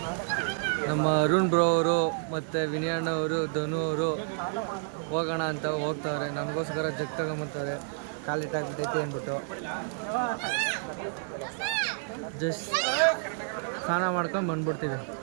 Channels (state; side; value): silent; left; digital silence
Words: ನಮ್ಮ ಅರುಣ್ ಬ್ರೋ ಅವರು ಮತ್ತು ವಿನಯಣ್ಣ ಅವರು, ಧನು ಅವರು ಹೋಗೋಣ ಅಂತ ಹೋಗ್ತಾರೆ. ನಮಗೋಸ್ಕರ ಜಗ್ ತಗೊಂಬರ್ತಾರೆ. ಕಾಲಿಟ್ಟಾಗ್ಬಿಟ್ಟೈತೆ ಅಂದ್ಬಿಟ್ಟು ಜಸ್ಟ್ ಸ್ನಾನ ಮಾಡ್ಕೊಂಡು ಬಂದ್ಬಿಡ್ತೀವಿ.